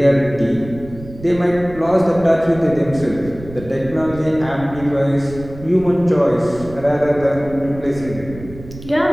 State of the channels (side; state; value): right; noise; rumble, 15 dB below the sound